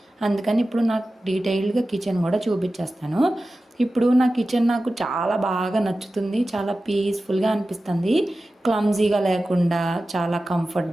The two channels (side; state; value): both; normal; correlation 0.95